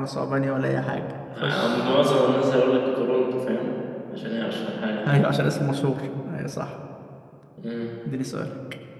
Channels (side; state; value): both; identical; correlation 1.00